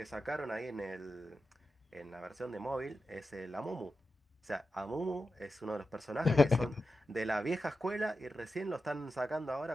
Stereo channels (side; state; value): both; normal; correlation 0.91